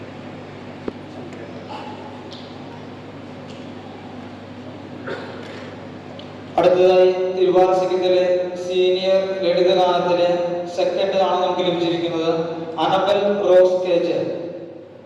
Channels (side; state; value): both; identical; correlation 1.00